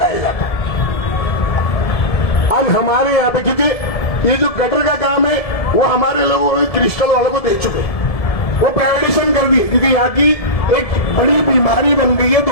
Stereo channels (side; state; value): right; late; 1.7 ms